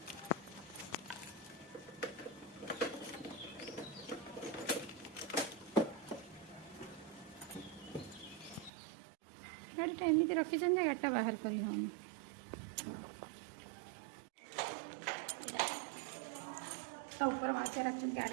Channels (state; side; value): drops out; left; at 8.7 s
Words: ଗାଡ଼ିଟା ଏମିତି ରଖିଛନ୍ତି ଯେ ଗାଡ଼ିଟା ବାହାର କରି ହେଉନି। तो ऊपर मासे रखुन